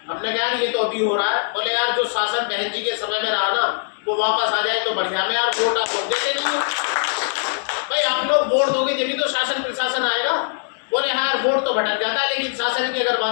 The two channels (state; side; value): silent; right; 65 dB below the other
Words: हमने कहा ये तो अभी हो रहा है। बोले यार जो शासन बहन जी के समय में रहा ना वो वापस आ जाए तो बढ़िया। में यार वोट आप लोग देते नहीं हो भाई, आप लोग वोट दोगे जब भी तो शासन प्रशासन आएगा। बोले हाँ यार वोट तो भटक जाता है, लेकिन शासन की अगर